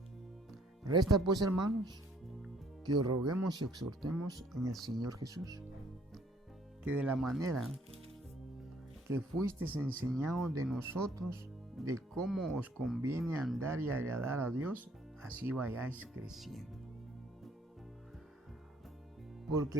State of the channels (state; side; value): normal; both; correlation 0.62